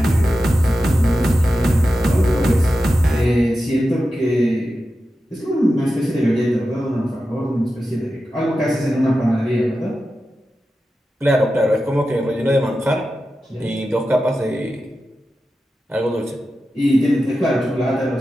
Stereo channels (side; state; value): both; normal; correlation 0.92